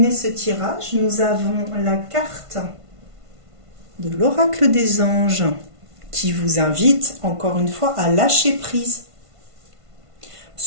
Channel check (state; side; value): late; left; 1.5 ms